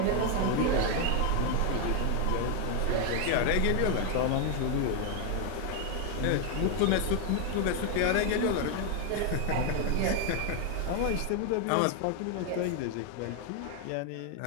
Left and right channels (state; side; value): different; both; correlation 0.01